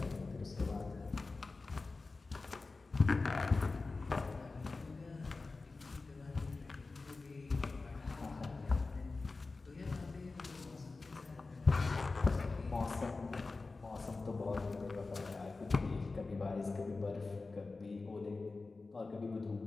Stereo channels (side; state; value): right; quieter; 3.7 dB